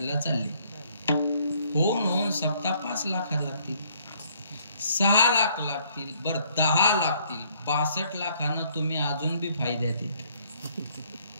चालले. होऊन सप्ताह 5 लाख लागतील, 6 लाख लागतील, बरं 10 लागतील. 62 लाखानं तुम्ही अजून बी फायद्यात येते.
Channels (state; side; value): inverted; both; correlation -0.64